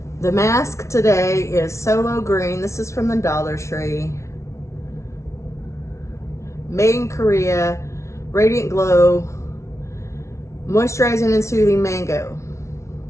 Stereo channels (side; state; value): right; late; 0.14 ms